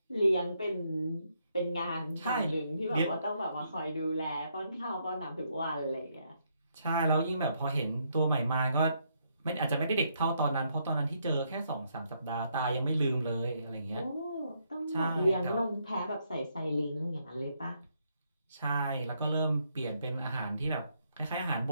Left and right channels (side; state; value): both; inverted; correlation -0.75